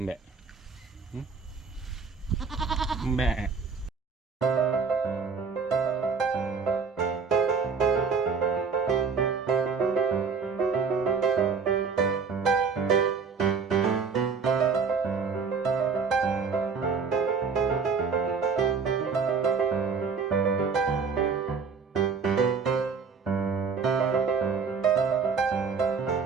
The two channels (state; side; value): quieter; left; 5.4 dB